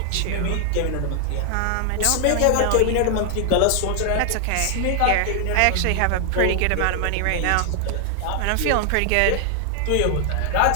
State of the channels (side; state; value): both; different; correlation 0.00